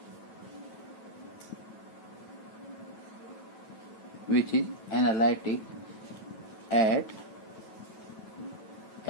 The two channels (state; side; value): late; right; 9.1 ms